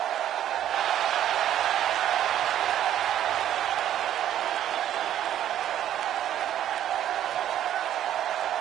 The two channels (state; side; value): quieter; left; 11.3 dB